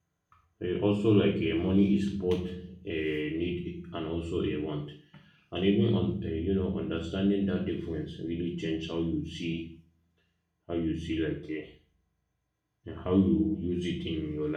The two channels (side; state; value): both; identical; correlation 1.00